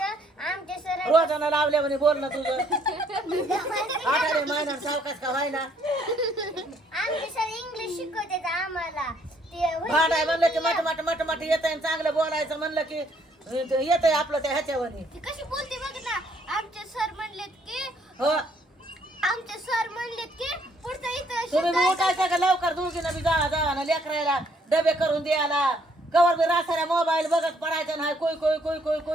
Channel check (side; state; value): both; normal; correlation 0.67